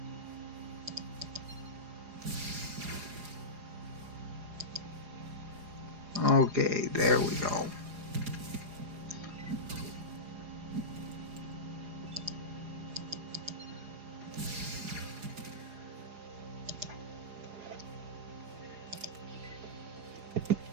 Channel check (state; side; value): late; left; 4.8 ms